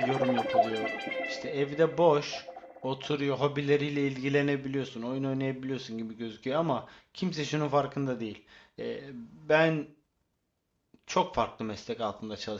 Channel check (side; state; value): both; identical; correlation 1.00